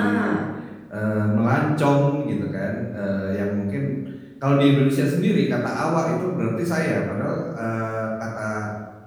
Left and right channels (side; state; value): both; identical; correlation 1.00